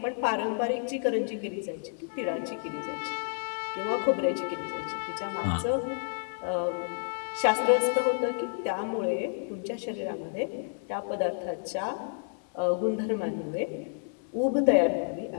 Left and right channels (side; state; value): right; silent; 58 dB below the other